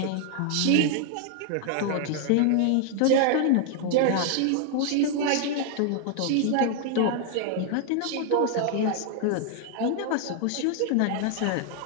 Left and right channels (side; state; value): both; different; correlation 0.00